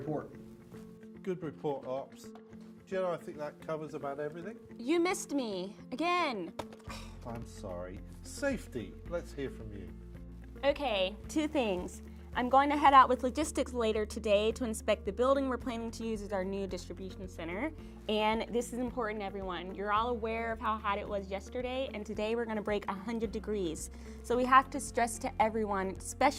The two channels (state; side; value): identical; both; correlation 1.00